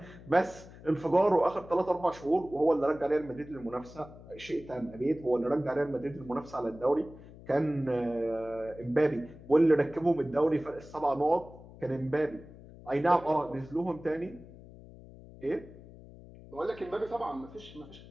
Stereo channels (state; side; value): noise; left; hum, 18 dB below the sound